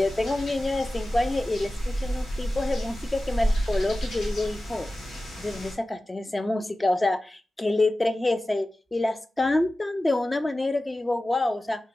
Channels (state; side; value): normal; both; correlation 0.96